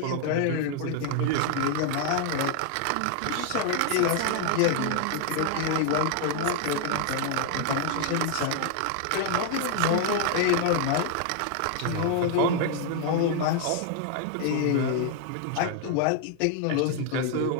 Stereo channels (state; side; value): different; both; correlation 0.00